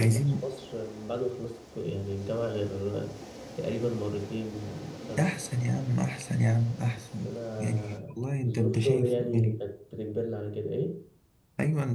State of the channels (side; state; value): both; identical; correlation 1.00